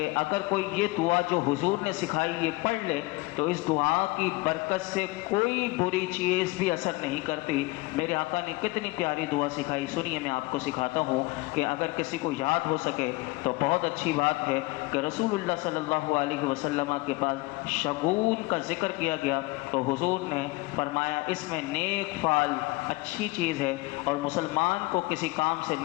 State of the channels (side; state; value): right; quieter; 23.1 dB